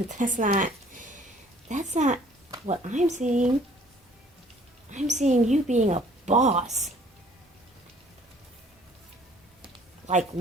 That's not what I'm seeing. I'm seeing you being a boss. Like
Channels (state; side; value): normal; both; correlation 0.56